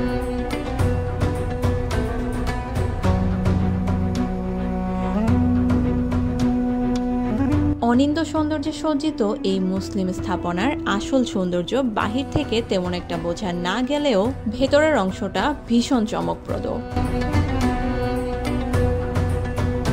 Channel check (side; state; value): both; identical; correlation 1.00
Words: অনিন্দ্য সৌন্দর্যে সজ্জিত এই মুসলিম স্থাপনার আসল সৌন্দর্য বাহির থেকে তেমন একটা বোঝা না গেলেও ভেতরের অংশটা ভীষণ চমকপ্রদ।